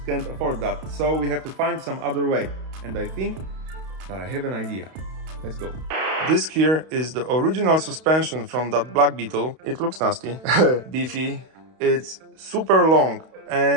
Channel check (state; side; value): late; left; 32 ms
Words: can't afford that. So we have to find some other way. And I think that I have an idea. Let's go. This here is the original suspension from that black Beetle. It looks nasty, beefy. It's super long.